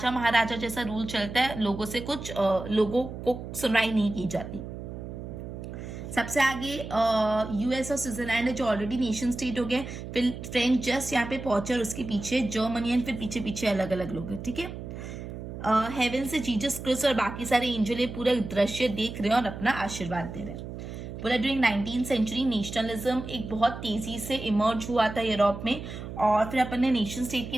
महाराजा जैसा रूल चलता है, लोगों से कुछ लोगों को सुनवाई नहीं की जाती। सबसे आगे यूएस और स्विट्जरलैंड है जो ऑलरेडी नेशन स्टेट हो गए। फिर फ्रेंच जस्ट यहाँ पे पहुंचे और उसके पीछे जर्मनी एंड फिर पीछे पीछे अलग अलग लोग हैं। ठीक है, हेवन से जीसस क्रिस्ट और बाकी सारे एंजल ये पूरा दृश्य देख रहे हैं और अपना आशीर्वाद दे रहे हैं। पूरा ड्यूरिंग 19th सेंचुरी नेशनलिज्म एक बहुत तेजी से इमर्ज हुआ था यूरोप में। और फिर अपन ने नेशन स्टेट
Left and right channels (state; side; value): noise; right; hum, 9 dB below the sound